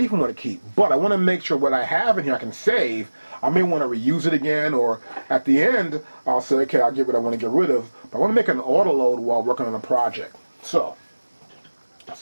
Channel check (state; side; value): inverted; both; correlation -1.00